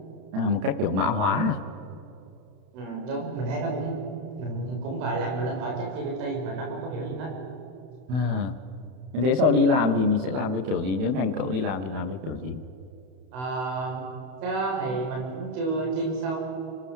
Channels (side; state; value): left; late; 32 ms